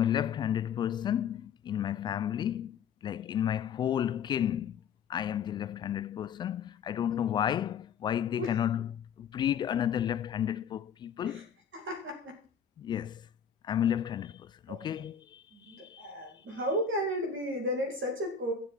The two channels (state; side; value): quieter; right; 7.1 dB